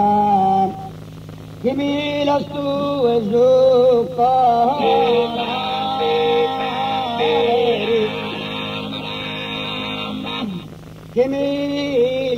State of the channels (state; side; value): identical; both; correlation 1.00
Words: che mi la su e su che mi